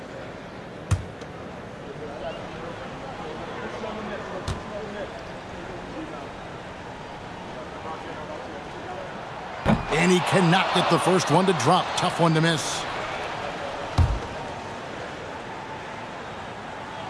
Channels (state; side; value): identical; both; correlation 1.00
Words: And he cannot get the first one to drop. Tough one to miss.